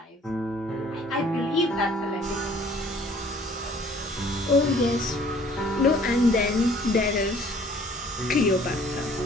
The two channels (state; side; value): normal; both; correlation 0.56